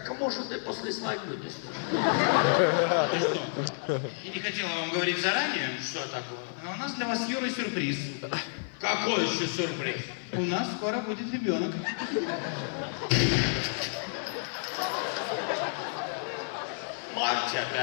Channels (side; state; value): right; silent; 58 dB below the other